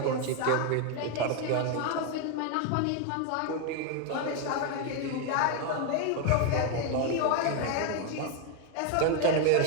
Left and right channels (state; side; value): different; both; correlation 0.01